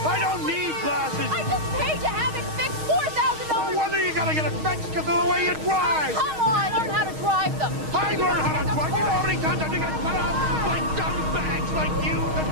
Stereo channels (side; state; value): left; late; 6.4 ms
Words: I don't need glasses. I just paid to have it fixed $4,000. No wonder you gotta get it fixed because of the way you drive. Come on, learn how to drive them. I learned how to drive. You know how many times I think I cut off by dumb bags like you, the